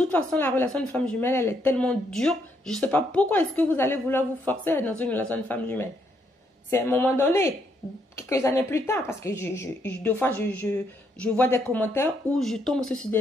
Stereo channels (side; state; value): both; normal; correlation 0.74